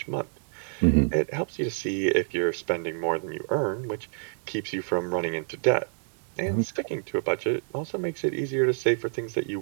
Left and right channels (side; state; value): left; silent; 60 dB below the other